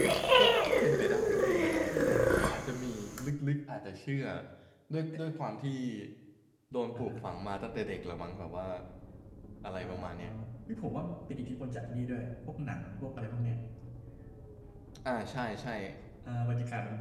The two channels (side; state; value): both; identical; correlation 1.00